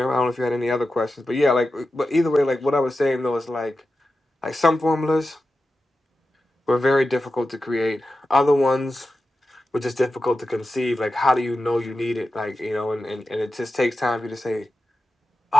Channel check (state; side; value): normal; both; correlation 0.91